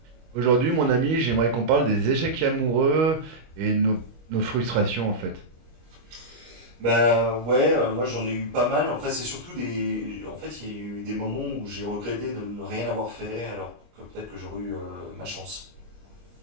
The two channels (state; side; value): late; left; 25 ms